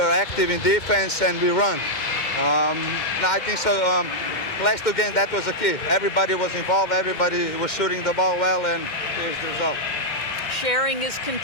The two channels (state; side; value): late; right; 2.1 ms